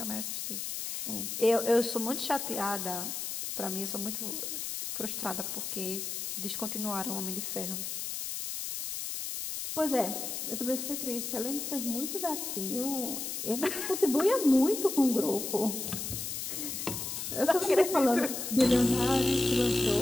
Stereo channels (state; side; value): noise; left; hiss, 4 dB below the sound